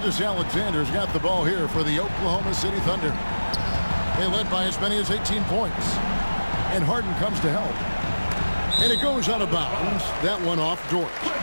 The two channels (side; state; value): both; inverted; correlation -1.00